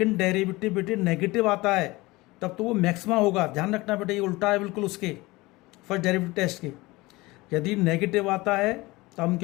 डेरिवेटिव बेटे नेगेटिव आता है तब तो वो मैक्सिमा होगा। ध्यान रखना बेटे, ये उल्टा है बिल्कुल उसके फर्स्ट डेरिवेटिव टेस्ट के। यदि नेगेटिव आता है तो हम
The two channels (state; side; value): quieter; right; 21.3 dB